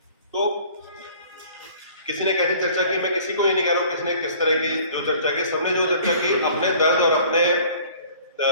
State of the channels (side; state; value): both; inverted; correlation -0.51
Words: तो किसी ने कैसी चर्चा की, मैं किसी को ये नहीं कह रहा हूँ किसी ने किस तरह की जो चर्चा की, सबने जो चर्चा की अपने दर्द और अपने